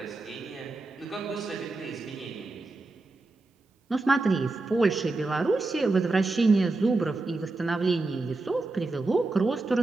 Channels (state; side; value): quieter; left; 3.3 dB